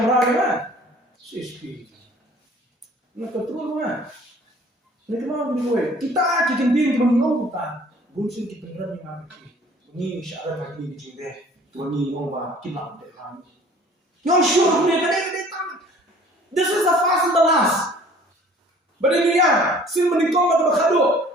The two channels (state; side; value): normal; both; correlation 0.51